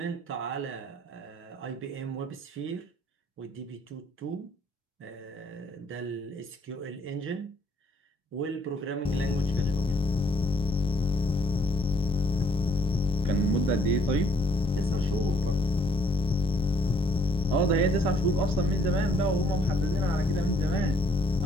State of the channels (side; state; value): both; normal; correlation 0.65